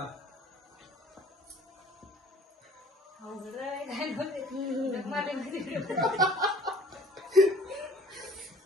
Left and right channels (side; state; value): both; normal; correlation 0.51